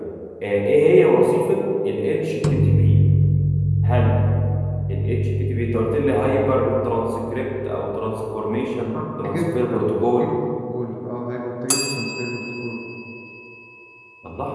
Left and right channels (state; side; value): identical; both; correlation 1.00